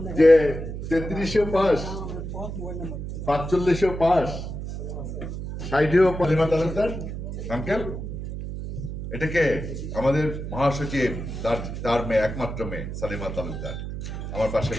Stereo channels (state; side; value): noise; right; hum, 6 dB below the sound